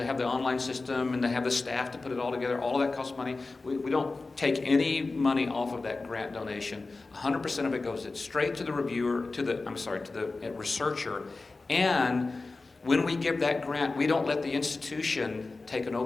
have the online system and to have the staff to put it all together. All of that costs money. We don't take any money off of that grant donation. 100% of it goes straight to the reviewer, to the researcher. And when we give that grant, we don't let the institution take an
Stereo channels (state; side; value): quieter; right; 3.6 dB